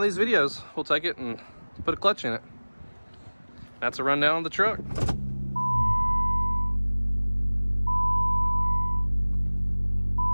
these videos, we'll take it and put a clutch in it. That's a rundown of the truck.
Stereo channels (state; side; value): inverted; both; correlation -1.00